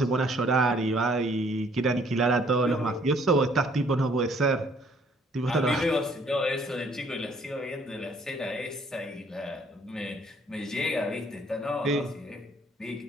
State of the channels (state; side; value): normal; both; correlation 0.62